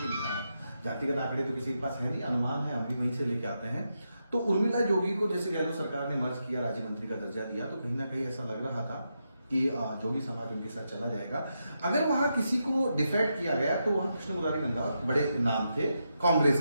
जातिगत आंकड़े तो किसी के पास है नहीं, अनुमान है, हम भी वहीं से लेके आते हैं। तो उर्मिला जोगी को जैसे गहलोत सरकार ने मर्ज किया, राज्य मंत्री का दर्जा दिया, तो कहीं ना कहीं ऐसा लग रहा था कि जोगी समाज उनके साथ चला जाएगा। अगर वहां किसी को डिफेक्ट किया गया तो वहां कृष्ण मुरारी रंधावा बड़े नाम थे कांग्रेस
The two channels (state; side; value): inverted; both; correlation -0.85